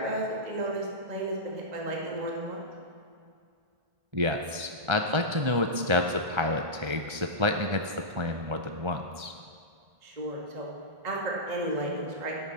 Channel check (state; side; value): late; left; 1.3 ms